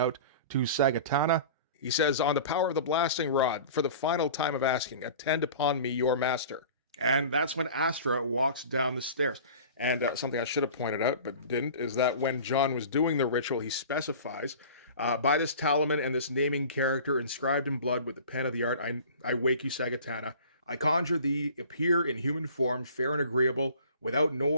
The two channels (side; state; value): both; inverted; correlation -0.41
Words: to Sagatana. He says, on the power of the blasting rod, for the final time of asking, attend upon me, your master. And that's when Astra walks down the stairs. And something I should have pointed out, but didn't, is that when John was doing the ritual, he specifies, by this talisman and this naming character inscribed in blood with the pen of the art, I wake you, Sagatana. I conjure thee, appear in human form, fair and agreeable, without